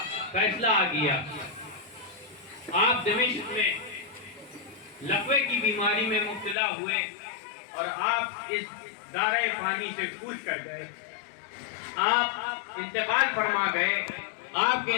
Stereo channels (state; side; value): drops out; right; at 6.6 s